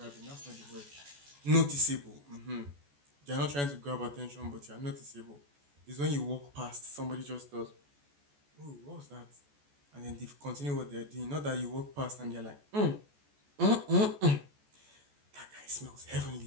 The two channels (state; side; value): late; left; 14 ms